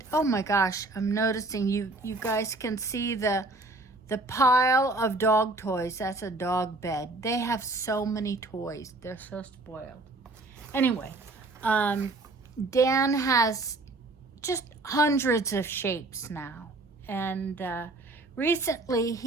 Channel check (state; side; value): quieter; left; 3.0 dB